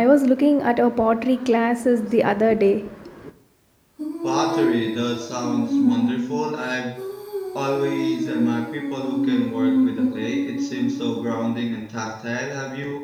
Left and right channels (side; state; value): both; identical; correlation 1.00